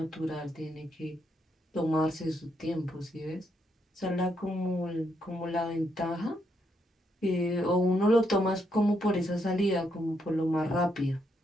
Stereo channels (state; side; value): normal; both; correlation 0.77